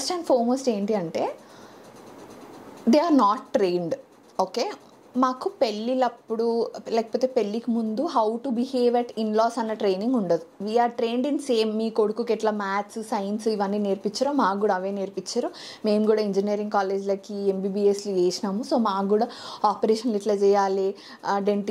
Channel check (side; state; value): both; identical; correlation 1.00